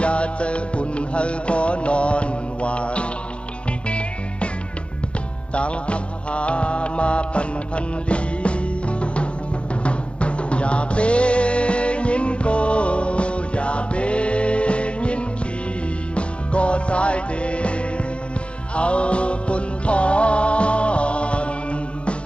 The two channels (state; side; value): late; right; 0.058 ms